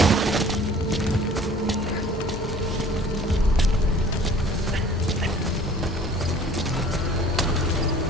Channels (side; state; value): both; normal; correlation 0.49